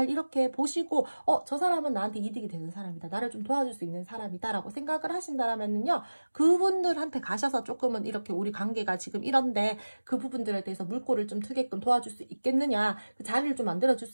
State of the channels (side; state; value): both; inverted; correlation -1.00